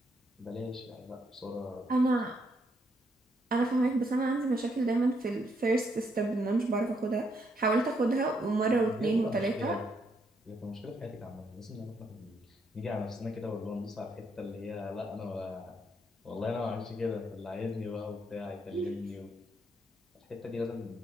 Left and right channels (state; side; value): normal; both; correlation 0.74